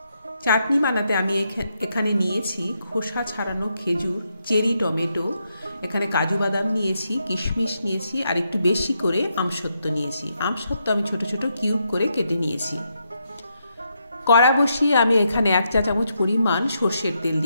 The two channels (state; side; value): inverted; both; correlation -0.80